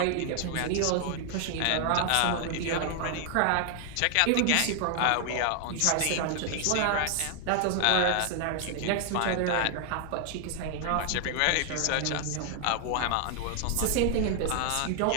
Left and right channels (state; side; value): different; both; correlation 0.00